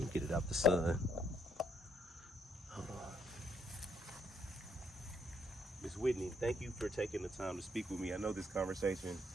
get it out the sun. Hold on. Miss Whitney, thank you for taking the time to speak with me. I know this conversation,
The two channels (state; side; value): normal; both; correlation 0.71